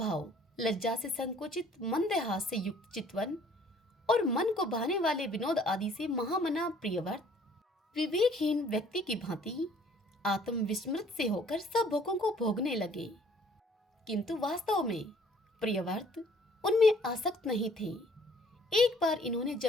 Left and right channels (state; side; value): normal; both; correlation 0.57